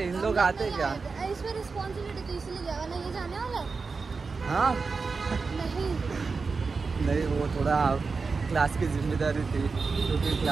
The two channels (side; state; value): left; quieter; 4.6 dB